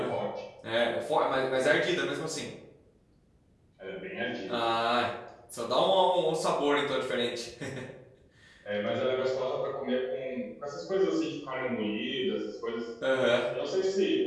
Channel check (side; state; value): both; identical; correlation 1.00